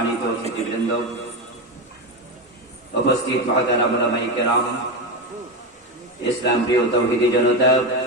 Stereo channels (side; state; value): both; normal; correlation 0.15